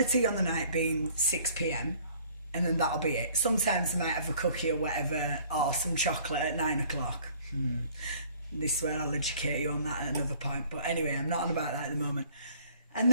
tea on the night being 6 p.m, and then that'll be it. Sometimes they might have a cookie or whatever, or some chocolate at 9 o'clock. This is where I'll educate you on that at another point. But anyway, I'm not on about that at the moment. And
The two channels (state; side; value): inverted; both; correlation -0.55